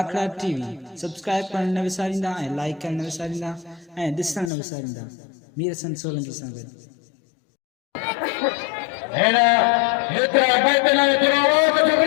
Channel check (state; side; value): drops out; right; at 4.5 s